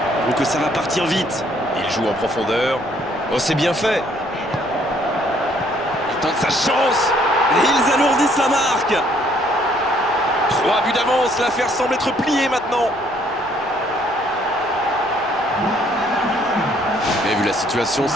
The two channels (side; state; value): left; noise; rumble, 24 dB below the sound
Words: Donc ça va partir vite. Il joue en profondeur. Oh, c'est bien fait. Il tente sa chance. Et ils alourdissent la marque. 3 buts d'avance. L'affaire semble être pliée maintenant. Mais vu la situation,